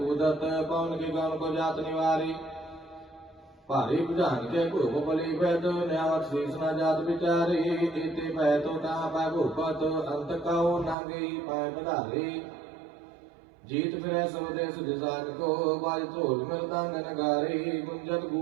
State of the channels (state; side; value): drops out; left; at 11.0 s